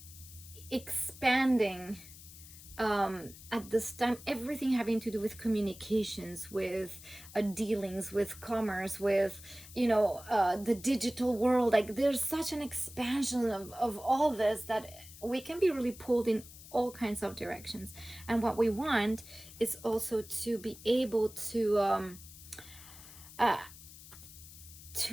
expanding at this time, everything having to do with communications, with dealings, with commerce, with the digital world. Like there's such an expansion of all this that we can be really pulled in all kinds of directions. And what we want is also to be able uh,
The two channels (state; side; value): noise; left; hiss, 17 dB below the sound